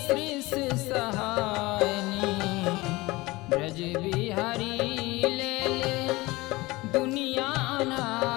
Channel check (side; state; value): right; quieter; 21.5 dB